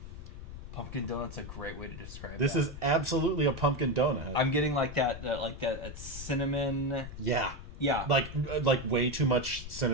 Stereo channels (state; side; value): noise; left; rumble, 11 dB below the sound